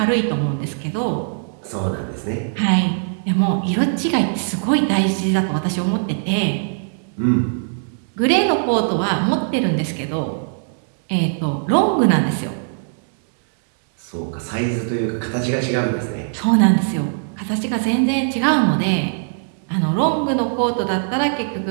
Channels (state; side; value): silent; left; digital silence